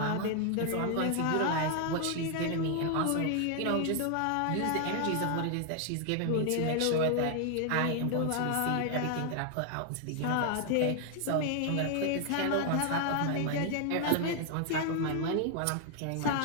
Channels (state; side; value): different; both; correlation 0.00